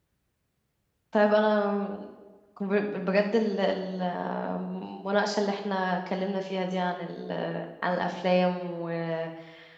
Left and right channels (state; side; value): identical; both; correlation 1.00